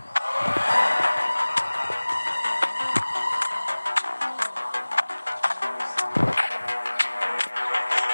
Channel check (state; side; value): inverted; both; correlation -1.00